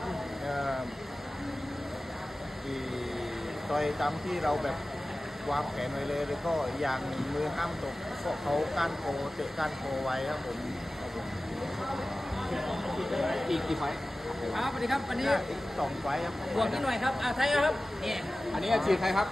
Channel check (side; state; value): both; normal; correlation 0.96